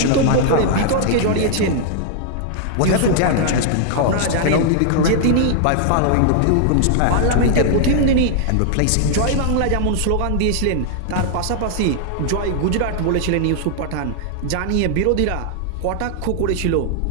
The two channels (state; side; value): different; both; correlation -0.01